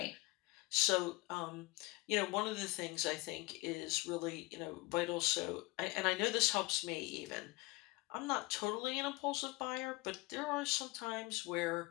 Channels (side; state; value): right; quieter; 22.9 dB